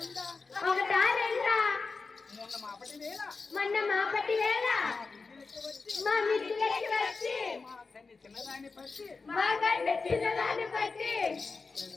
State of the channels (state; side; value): quieter; right; 4.3 dB